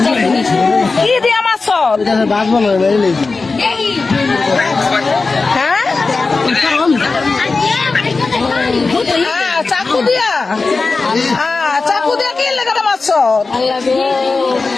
কি দিয়া মারছো হ্যাঁ চাকু দিয়া চাকু দিয়া কি লাগাটা মারছ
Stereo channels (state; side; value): quieter; right; 4.0 dB